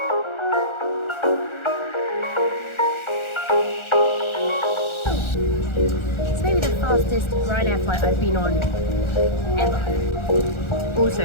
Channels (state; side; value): late; right; 1.4 ms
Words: It's maybe the fastest Ryanair flight I've been on ever.